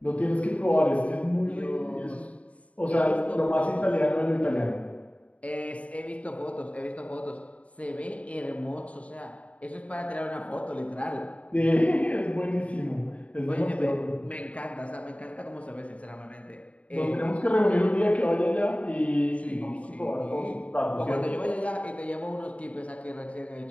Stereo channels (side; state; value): right; late; 0.066 ms